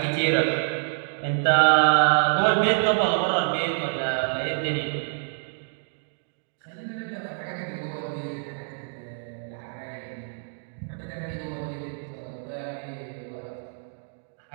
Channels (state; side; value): silent; left; digital silence